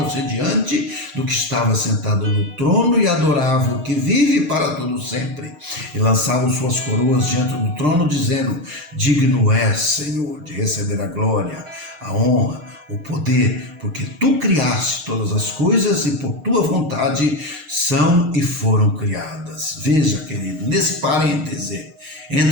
diante do que estava sentado no trono e adoravam o que vive para todo sempre. E lançavam suas coroas diante do trono, dizendo: digno és, Senhor, de receber a glória, a honra, o poder, porque tu criaste todas as coisas e por tua vontade são e foram criadas. Veja, querido, nesse parêntese,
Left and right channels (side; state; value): left; late; 6.5 ms